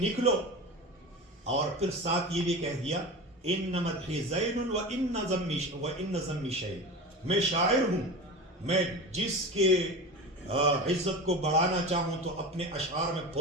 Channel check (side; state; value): both; normal; correlation 0.29